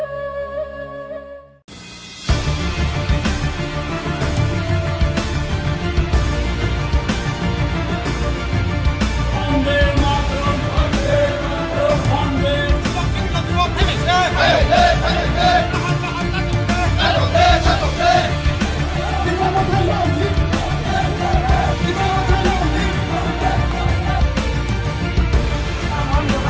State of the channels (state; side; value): identical; both; correlation 1.00